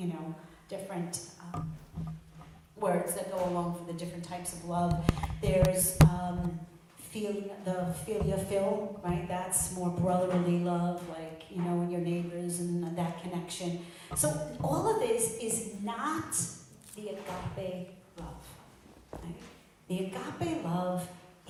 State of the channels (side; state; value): both; identical; correlation 1.00